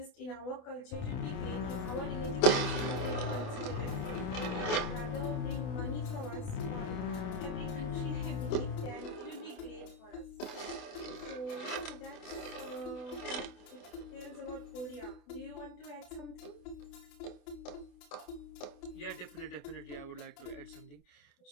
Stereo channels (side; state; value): right; late; 28 ms